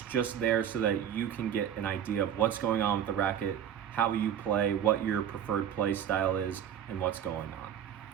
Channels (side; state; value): left; quieter; 9.3 dB